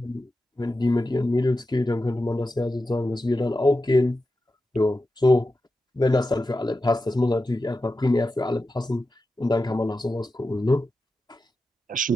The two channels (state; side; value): normal; both; correlation 0.91